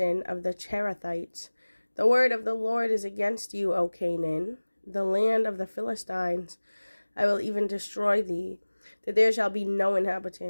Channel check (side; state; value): both; inverted; correlation -1.00